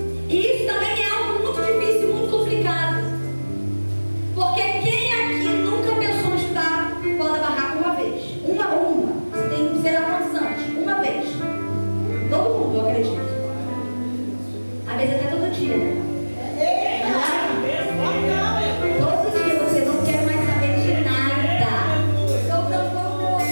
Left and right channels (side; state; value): both; inverted; correlation -1.00